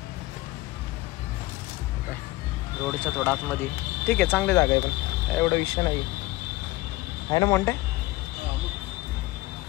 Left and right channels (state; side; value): quieter; right; 19.2 dB